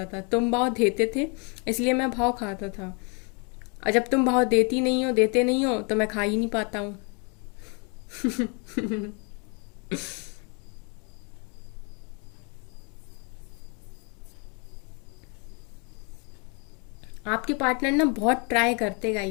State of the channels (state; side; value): quieter; right; 34.1 dB